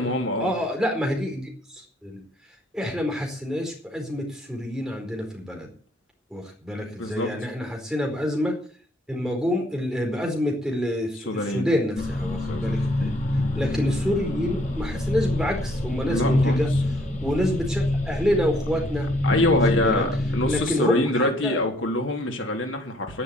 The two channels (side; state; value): both; normal; correlation 0.64